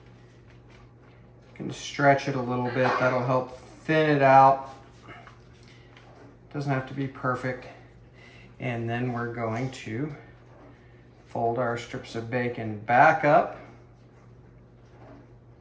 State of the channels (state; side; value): identical; both; correlation 1.00